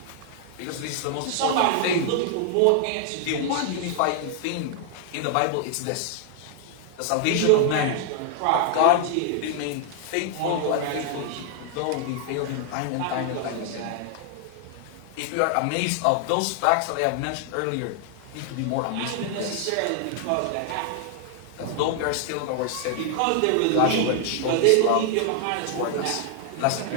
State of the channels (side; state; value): both; different; correlation 0.00